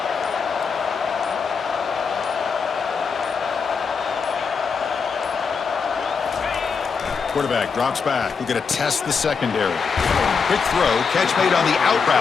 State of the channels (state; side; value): quieter; right; 5.6 dB